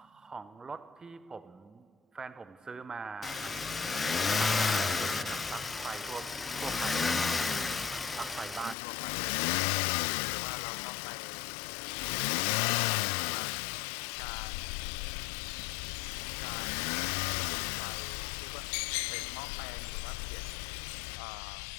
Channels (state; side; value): drops out; right; at 8.8 s